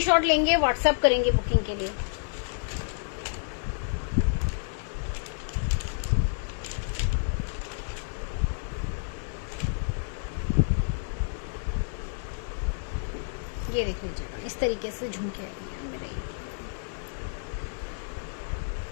लेंगे, व्हाट्सएप करेंगे बुकिंग के लिए। ये देखिए जरा इस तरीके से झुमके आएंगे।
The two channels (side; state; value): right; silent; digital silence